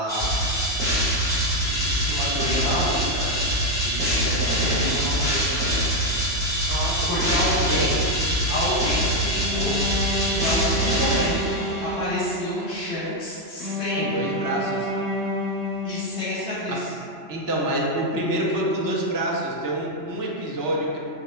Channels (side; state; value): right; late; 3.0 ms